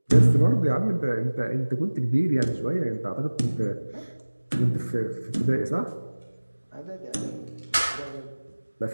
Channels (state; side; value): inverted; both; correlation -1.00